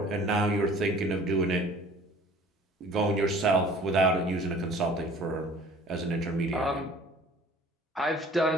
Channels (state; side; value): normal; both; correlation 0.50